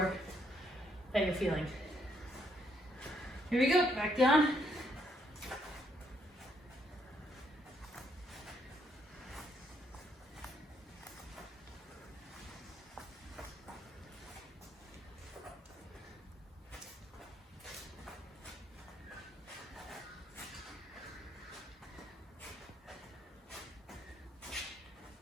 that you're feeling. Here we go, back down.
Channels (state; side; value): normal; both; correlation 0.73